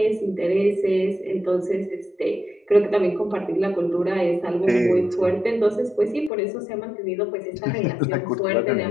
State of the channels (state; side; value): drops out; right; at 6.3 s